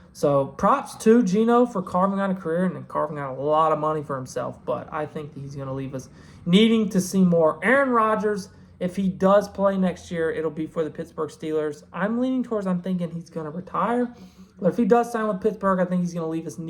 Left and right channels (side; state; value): both; identical; correlation 1.00